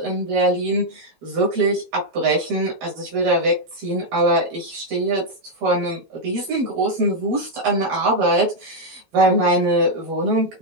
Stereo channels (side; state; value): left; late; 9.3 ms